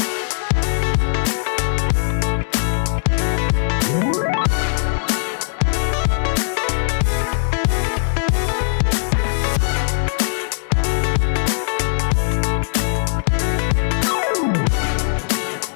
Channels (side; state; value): right; silent; digital silence